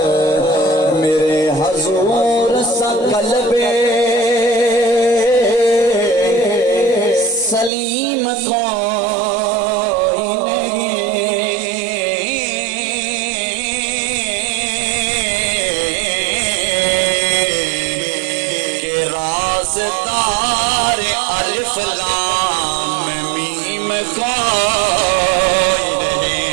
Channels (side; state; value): left; drops out; at 7.7 s